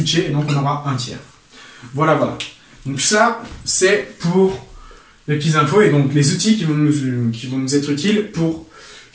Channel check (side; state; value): both; identical; correlation 1.00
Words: et donc on aura 1 tiers. Voilà, voilà. Donc ça, c'est pour les petites infos et donc les outils qui vont nous être utiles pour